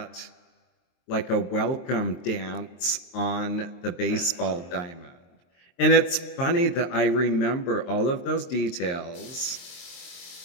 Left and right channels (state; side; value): late; right; 23 ms